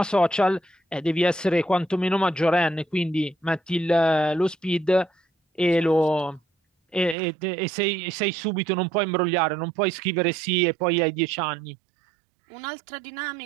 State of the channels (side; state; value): left; drops out; at 7.2 s